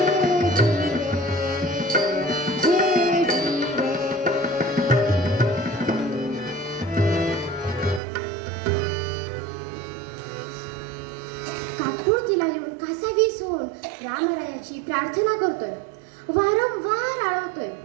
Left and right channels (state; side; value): drops out; left; at 8.0 s